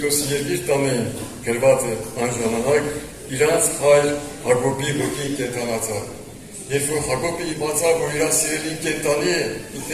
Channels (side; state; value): both; identical; correlation 1.00